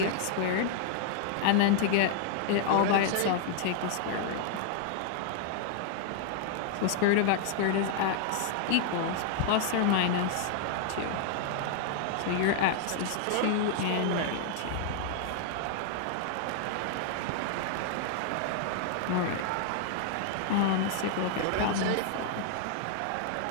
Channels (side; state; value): both; different; correlation -0.01